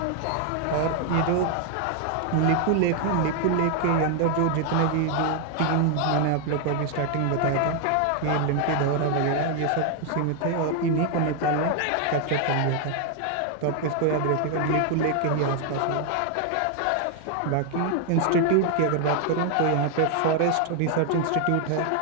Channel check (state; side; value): different; both; correlation 0.00